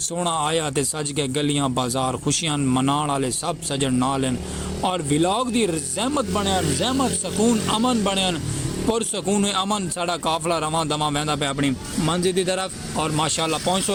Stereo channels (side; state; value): both; identical; correlation 1.00